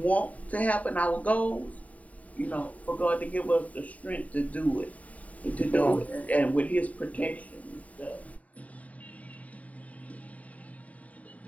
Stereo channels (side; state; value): right; late; 0.070 ms